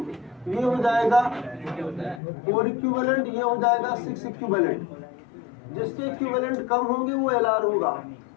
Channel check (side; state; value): right; drops out; at 2.2 s